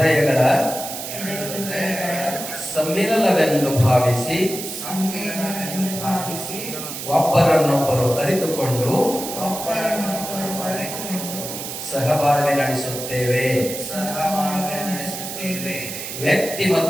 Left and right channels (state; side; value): noise; right; hiss, 7 dB below the sound